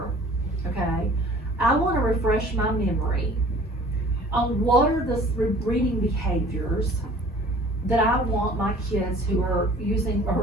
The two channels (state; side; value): normal; both; correlation 0.49